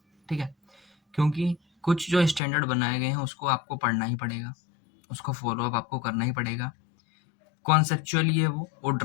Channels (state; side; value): drops out; right; at 2.4 s